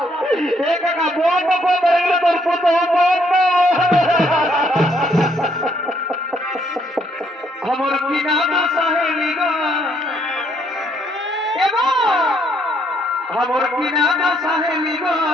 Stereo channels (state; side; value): normal; both; correlation 0.69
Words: কাকা বন্ধ করে তোর পুতো বন্ধ আমার কিনা সাহেলি গো আমার কিনা সাহেলি গো